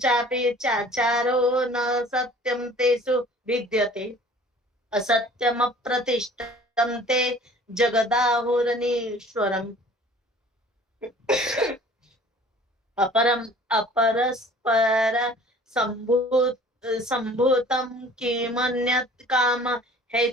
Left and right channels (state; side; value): normal; both; correlation 0.49